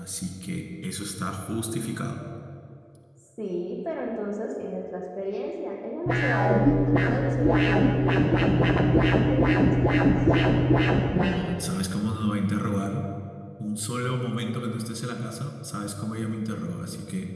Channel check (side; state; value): both; identical; correlation 1.00